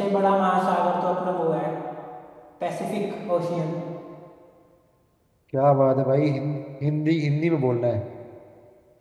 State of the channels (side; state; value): both; identical; correlation 1.00